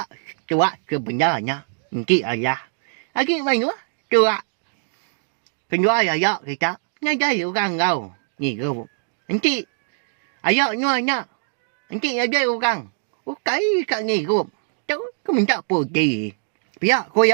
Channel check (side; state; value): left; silent; digital silence